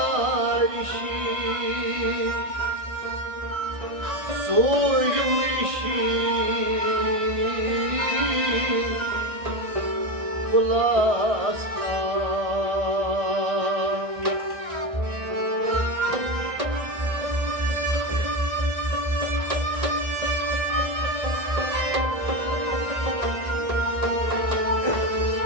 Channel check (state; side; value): late; left; 1.6 ms